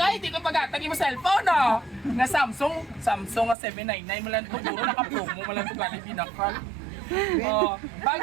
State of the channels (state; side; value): drops out; left; at 3.6 s